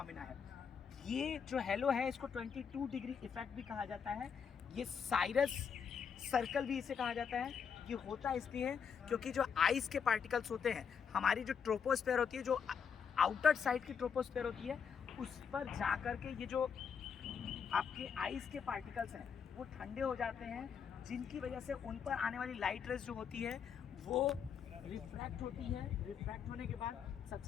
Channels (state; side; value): quieter; right; 6.9 dB